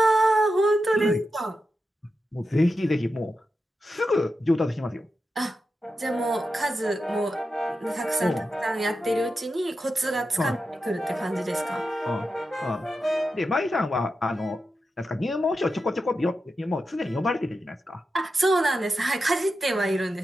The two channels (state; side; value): normal; both; correlation 0.89